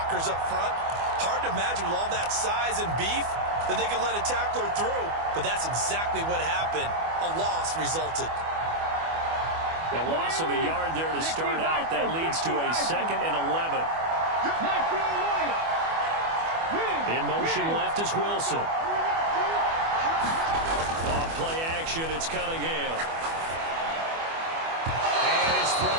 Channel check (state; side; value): late; left; 24 ms